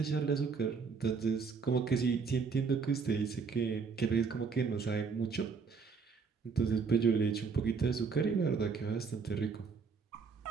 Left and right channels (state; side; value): quieter; left; 5.2 dB